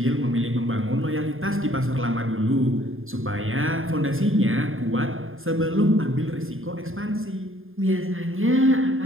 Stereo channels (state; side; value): late; left; 0.60 ms